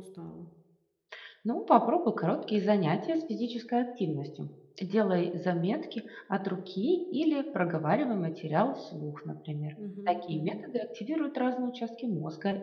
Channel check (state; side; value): identical; both; correlation 1.00